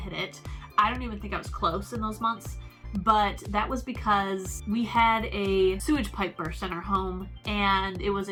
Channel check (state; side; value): identical; both; correlation 1.00